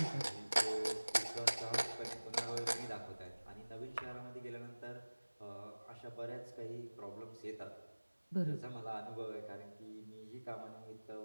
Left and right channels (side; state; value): both; inverted; correlation -1.00